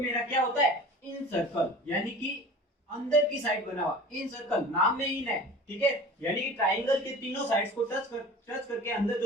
क्या होता है, इन सर्कल, यानी कि अंदर की साइड बना हुआ इन सर्कल, नाम में इन है। ठीक है, यानी कि ट्राइंगल के तीनों साइड्स को टच करके अंदर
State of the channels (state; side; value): normal; both; correlation 0.40